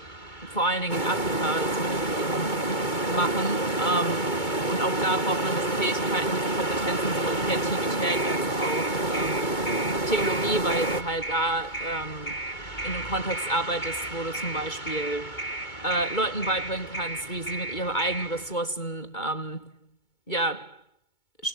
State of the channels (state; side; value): late; right; 2.2 ms